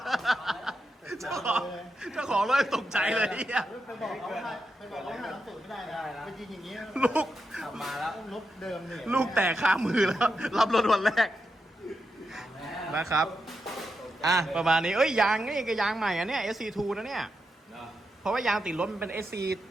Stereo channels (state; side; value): normal; both; correlation 0.86